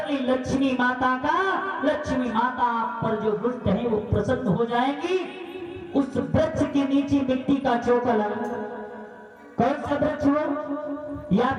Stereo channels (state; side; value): identical; both; correlation 1.00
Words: ले लक्ष्मी माता का। लक्ष्मी माता आप पर जो दुष्ट है वो प्रसन्न हो जाएंगी। उस वृक्ष के नीचे मिट्टी का चौका लगा, कौन सा वृक्ष हो, या